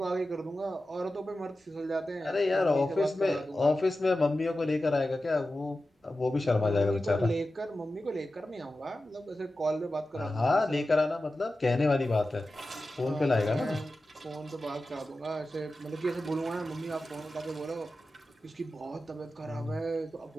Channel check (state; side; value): normal; both; correlation 0.93